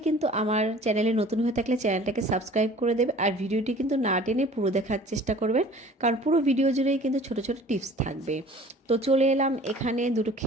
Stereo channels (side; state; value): both; normal; correlation 0.47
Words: কিন্তু আমার চ্যানেলে নতুন হয়ে থাকলে চ্যানেলটাকে সাবস্ক্রাইব করে দেবে, আর ভিডিওটি কিন্তু না টেনে পুরো দেখার চেষ্টা করবেন, কারণ পুরো ভিডিও জুড়েই কিন্তু ছোট ছোট টিপস থাকবে। তো চলে এলাম এখানে 2টো